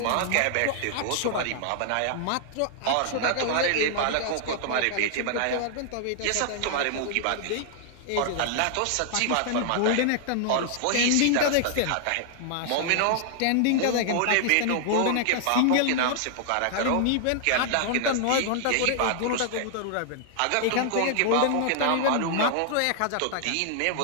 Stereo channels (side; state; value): both; different; correlation -0.01